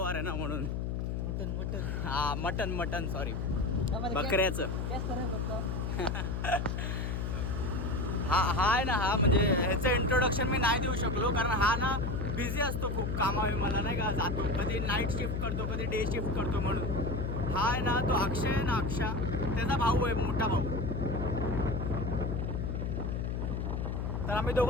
आहे ना म्हणून. मटन सॉरी, बकऱ्याचं. हा आहे ना. हा म्हणजे ह्याचं इंट्रोडक्शन मी नाही देऊ शकलो, कारण हा ना बिझी असतो खूप कामावी. मला नाही का जातो, कधी नाईट शिफ्ट करतो, कधी डे शिफ्ट करतो. म्हणून हा आहे ना, तो अक्षय आहे ना, त्याचा भाऊ आहे, मोठा भाऊ. तर आम्ही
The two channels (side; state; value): left; noise; hum, 1 dB below the sound